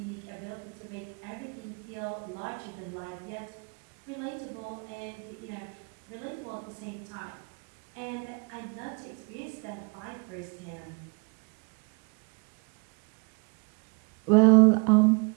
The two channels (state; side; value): quieter; left; 34.2 dB